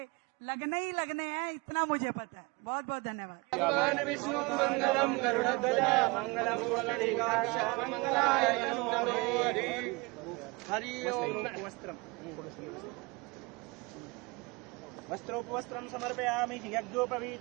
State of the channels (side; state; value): left; quieter; 26.9 dB